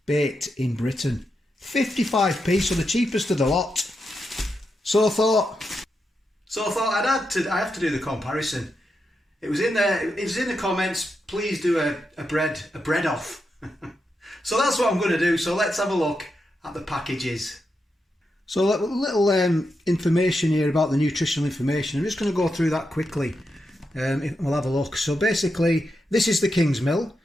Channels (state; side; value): normal; both; correlation 0.86